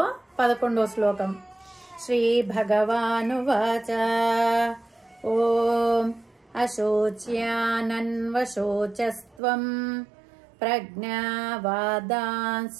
11వ శ్లోకం. శ్రీ భగవానువాచ ఓం అశోచ్యానన్వశోచస్త్వం ప్రజ్ఞావాదాంశ్చ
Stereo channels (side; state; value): left; drops out; at 9.4 s